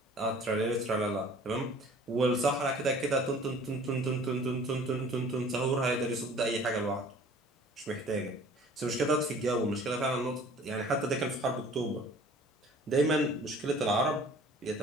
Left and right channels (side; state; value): both; normal; correlation 0.50